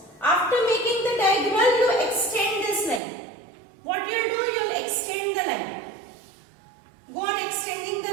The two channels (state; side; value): drops out; left; at 3.0 s